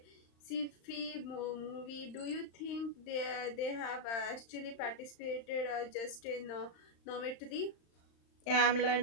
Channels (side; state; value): right; late; 35 ms